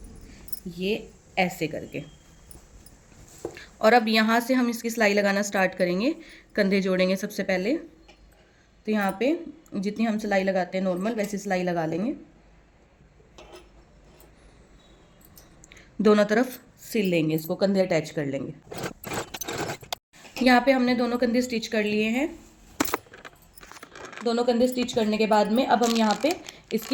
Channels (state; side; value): identical; both; correlation 1.00